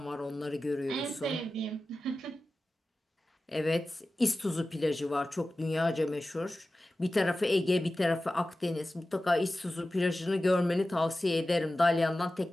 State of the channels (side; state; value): both; normal; correlation 0.95